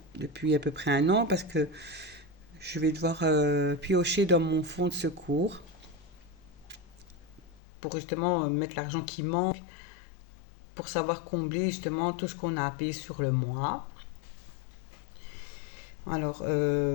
depuis à peu près un an parce que je vais devoir piocher dans mon fonds de secours pour justement mettre l'argent qui manque pour savoir combler justement tout ce qu'on a payé sur le mois. Alors,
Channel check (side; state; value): right; drops out; at 7.6 s